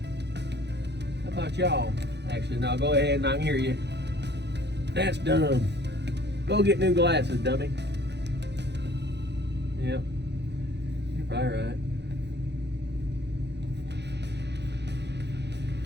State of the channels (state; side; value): late; left; 0.50 ms